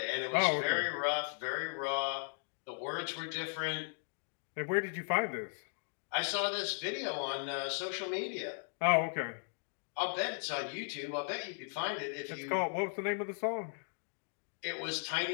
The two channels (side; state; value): right; silent; 53 dB below the other